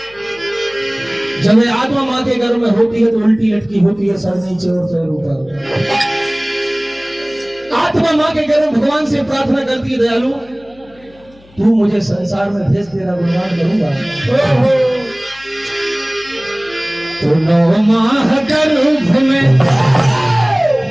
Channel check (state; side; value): noise; left; hum, 27 dB below the sound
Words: जब ये आत्मा माँ के गर्भ में होती है तो उल्टी लटकी होती है, सर नीचे और पैर ऊपर। आत्मा मां के गर्भ में भगवान से प्रार्थना करती है, दयालु तू मुझे संसार में भेज, तेरा गुणगान करूंगा। तो 9 माह गर्भ में